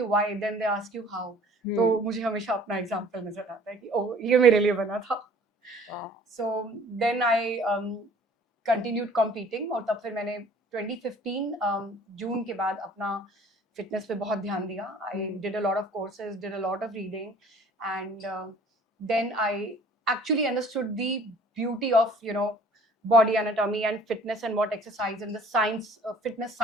why, then they ask you how, तो मुझे हमेशा अपना एग्जाम्पल नजर आता है कि ओह ये मेरे लिए बना था. So then I continued competing, और तब फिर मैंने 2015 जून के बाद अपना फिटनेस पे बहुत ध्यान दिया. I did a lot of courses, did a lot of reading, and then I actually understood the beauty of body anatomy and fitness, and what exercise and the science, fitness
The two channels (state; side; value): normal; both; correlation 0.52